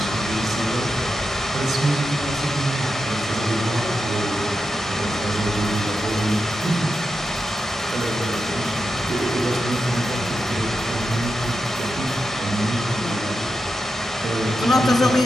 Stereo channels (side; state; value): both; normal; correlation 0.89